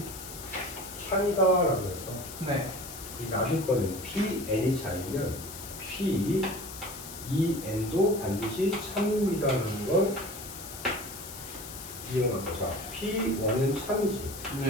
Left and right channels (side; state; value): left; noise; hiss, 12 dB below the sound